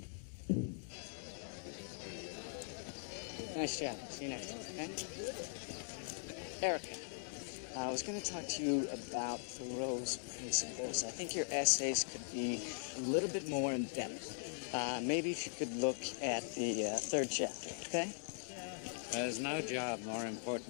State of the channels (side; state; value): right; silent; digital silence